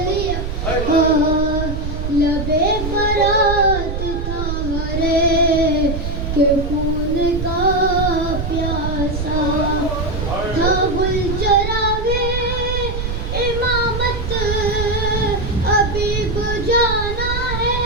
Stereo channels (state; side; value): noise; right; rumble, 4 dB below the sound